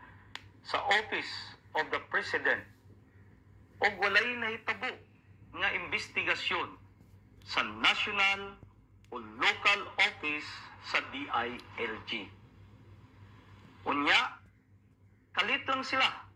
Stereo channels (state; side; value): identical; both; correlation 1.00